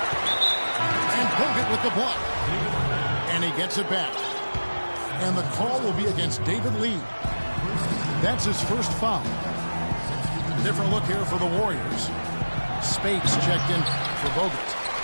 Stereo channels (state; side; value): inverted; both; correlation -1.00